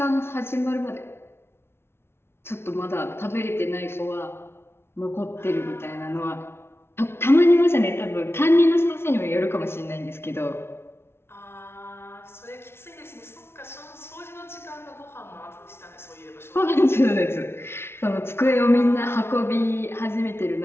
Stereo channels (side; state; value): right; late; 0.12 ms